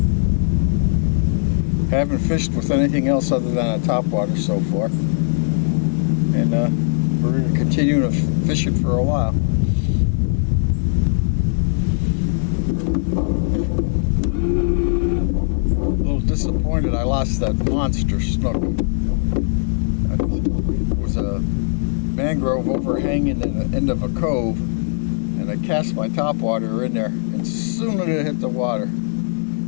Haven't fished with anything else other than a top water so far, and we're going to continue to fish it for a while. A little disappointed I lost that monster snook. It was a mangrove overhanging in the end of a cove, and I cast my topwater in there, and as soon as it hit the water,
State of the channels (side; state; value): right; silent; 55 dB below the other